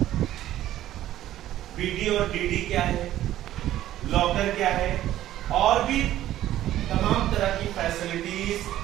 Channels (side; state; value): left; quieter; 13.3 dB